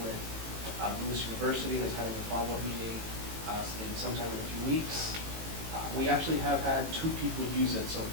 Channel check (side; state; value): left; late; 18 ms